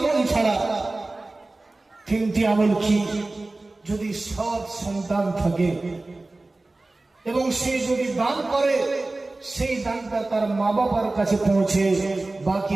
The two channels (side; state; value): left; quieter; 3.1 dB